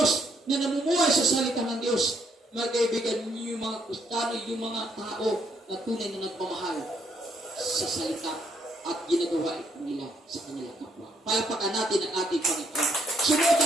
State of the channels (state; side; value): normal; both; correlation 0.71